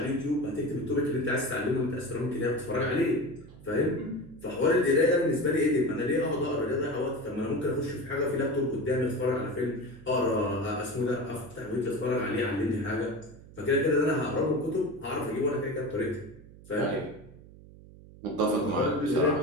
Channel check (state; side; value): noise; right; hum, 20 dB below the sound